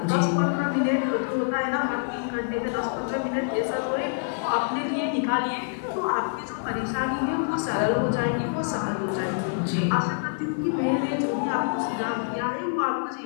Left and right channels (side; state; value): right; silent; digital silence